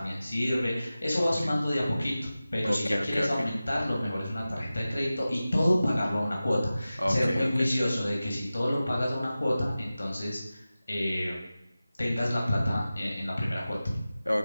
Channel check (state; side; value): inverted; both; correlation -0.95